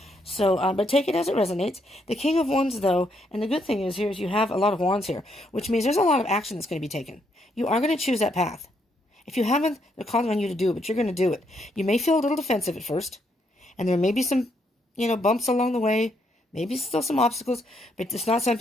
So, but take it as it resonates. The King of Wands though, and the good thing is you have a lot of wands here, which means there's a lot of action that's going to be taken. You are going to choose that path. If you haven't, they're calling on you to do it, but you're going to do it. You may feel a little defensive at first, and there may be some, bumps along the way, maybe still some obstacles, but it's not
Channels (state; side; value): normal; both; correlation 0.75